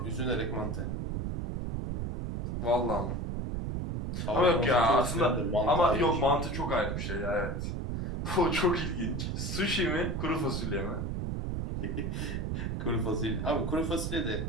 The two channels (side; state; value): right; noise; rumble, 2 dB below the sound